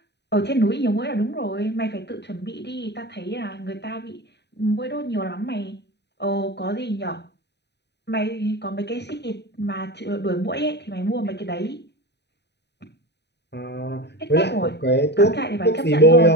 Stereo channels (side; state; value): right; late; 0.50 ms